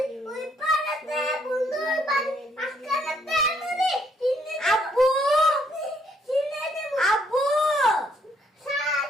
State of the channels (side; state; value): both; normal; correlation 0.69